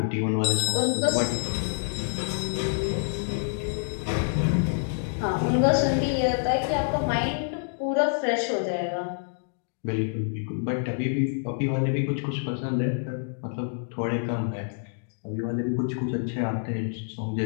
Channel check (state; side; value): silent; right; digital silence